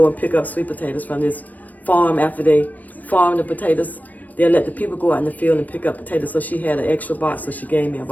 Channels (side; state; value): right; late; 0.080 ms